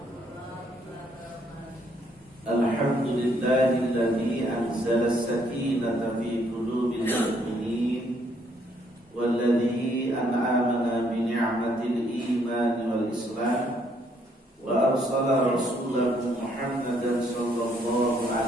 Alhamdulillahilladzi anzala as-sakinata fi qulubil mu'minin walladzi an'amana bi ni'matil iman wal islam wa arsala rasulahu Muhammadan sallallahu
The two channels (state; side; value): normal; both; correlation 0.69